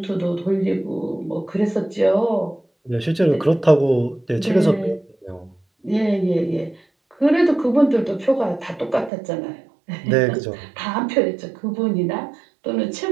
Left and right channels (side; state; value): left; drops out; at 9.1 s